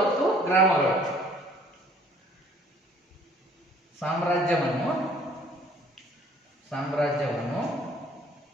ಮತ್ತು ಗ್ರಾಮಗಳು. ಸಾಮ್ರಾಜ್ಯವನ್ನು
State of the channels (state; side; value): normal; both; correlation 0.57